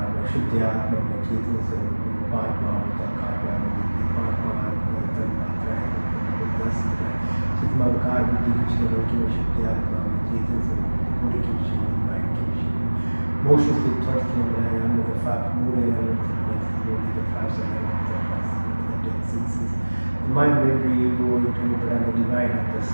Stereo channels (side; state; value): both; inverted; correlation -1.00